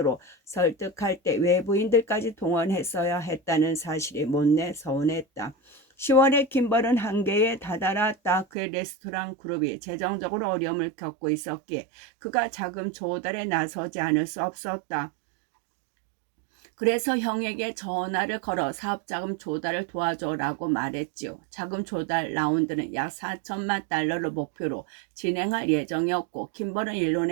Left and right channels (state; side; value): drops out; left; at 8.5 s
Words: 설득할 때 외부인들까지 동원했어야 했다는 사실이 못내 서운했다. 10월에 킴벌은 한계에 다다랐다. 그의 레스토랑 그룹이 재정적으로 어려움을 겪고 있었기에 그가 자금 조달에 나서지 않을 수 없었다. 그래서 형에게 전화를 걸어 사업자금 조달을 도와줘라고 말했지요. 자금 조달 라운드는 약 4천만 달러를 목표로 진행할 예정이었고, 킴벌은